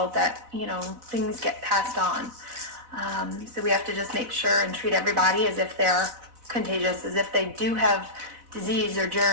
that things get passed on. So we have to just make sure and treat everybody as if they're contagious, as if they do have disease or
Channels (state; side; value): late; left; 4.0 ms